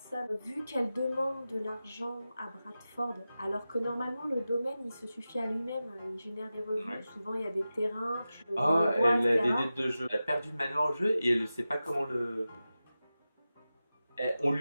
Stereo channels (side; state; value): both; inverted; correlation -0.94